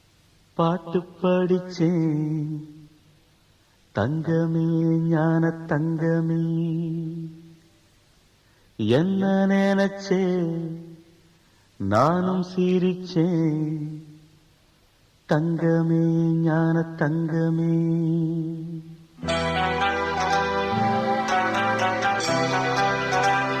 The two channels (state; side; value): identical; both; correlation 1.00